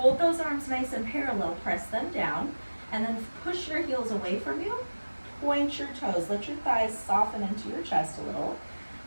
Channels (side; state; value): both; inverted; correlation -1.00